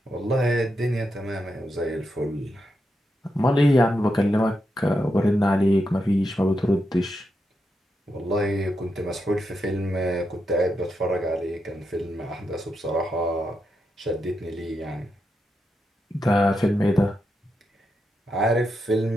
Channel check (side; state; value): both; normal; correlation 0.85